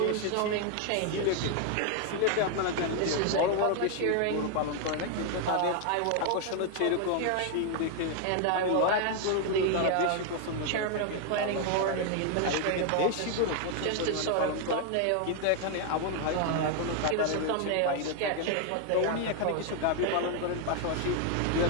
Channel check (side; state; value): both; different; correlation 0.00